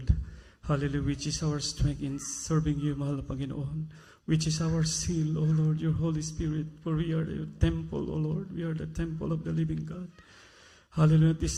Hallelujah, which is our strength in serving you, mahal na Panginoon. Which is our seal, O Lord, your Holy Spirit. For we are your temple, O Lord. We are the temple of the living God. Hallelujah. At this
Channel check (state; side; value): identical; both; correlation 1.00